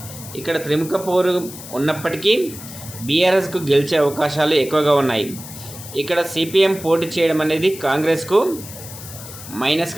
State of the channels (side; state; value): left; noise; hiss, 14 dB below the sound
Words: ఇక్కడ త్రిముఖ పోరు ఉన్నప్పటికీ బీఆర్ఎస్కు గెలిచే అవకాశాలు ఎక్కువగా ఉన్నాయి. ఇక్కడ సిపిఎం పోటీ చేయడం అనేది కాంగ్రెస్కు